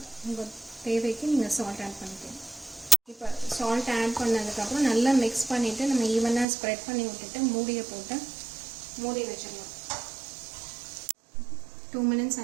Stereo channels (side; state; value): left; drops out; at 6.5 s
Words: உங்கள் தேவைக்கு நீங்கள் சால்ட் ஆட் பண்ணிக்கலாம். இப்போ சால்ட் ஆட் பண்ணதுக்கப்புறம் நல்லா மிக்ஸ் பண்ணிவிட்டு நம்ம ஈவனாக ஸ்ப்ரெட் பண்ணி விட்டுட்டு மூடியை போட்டு மூடி வச்சிடலாம். 2 மினிட்ஸ்